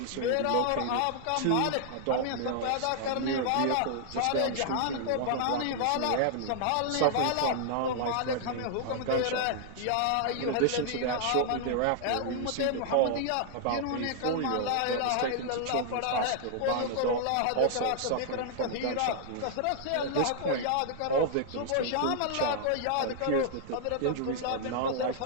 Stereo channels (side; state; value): both; different; correlation 0.00